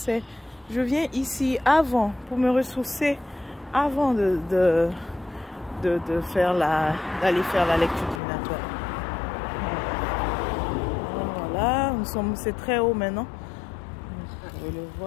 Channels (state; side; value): drops out; right; at 8.2 s